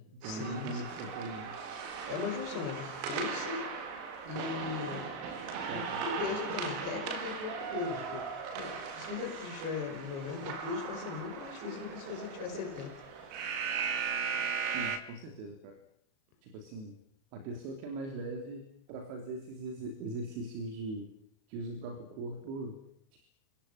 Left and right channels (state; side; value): late; left; 37 ms